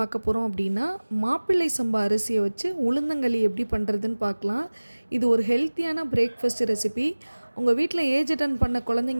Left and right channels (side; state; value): both; inverted; correlation -1.00